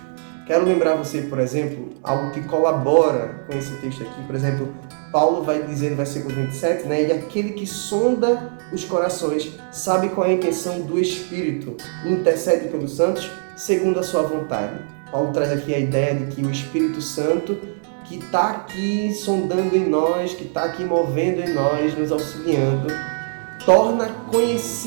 Quero lembrar você, por exemplo, algo que colabora com esse texto aqui. Por exemplo, Paulo vai dizer no versículo 27, né? E aquele que sonda os corações sabe qual é a intenção do Espírito e intercede pelos santos segundo a sua vontade. Paulo traz aqui a ideia de que o Espírito Santo, que está aqui sondando em nós, que está aqui movendo em nós, nos auxiliando, torna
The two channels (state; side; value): silent; left; digital silence